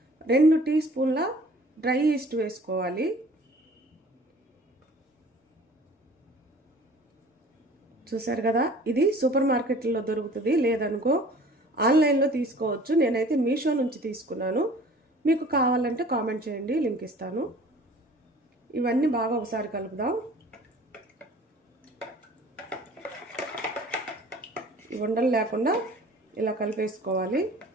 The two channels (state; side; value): normal; both; correlation 0.48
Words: 2 టీ స్పూన్ల డ్రై ఈస్ట్ వేసుకోవాలి. చూసారు కదా, ఇది సూపర్ మార్కెట్లో దొరుకుతుంది, లేదనుకో ఆన్లైన్లో తీసుకోవచ్చు. నేనైతే మీషో నుంచి తీసుకున్నాను. మీకు కావాలంటే కామెంట్ చేయండి, లింక్ ఇస్తాను. ఇవన్నీ బాగా ఒకసారి కలుపుదాం. ఉండలు లేకుండా ఇలా కలిపేసుకోవాలి.